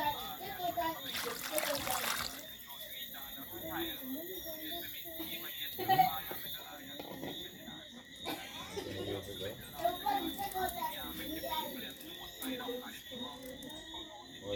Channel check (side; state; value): both; identical; correlation 1.00